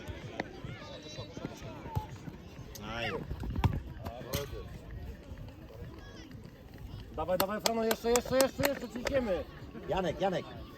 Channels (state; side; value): identical; both; correlation 1.00